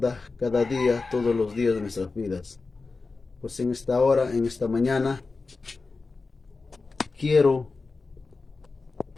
cada día, todos los días de nuestras vidas? Pues en esta hora, en esta mañana, quiero,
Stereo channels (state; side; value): quieter; right; 4.0 dB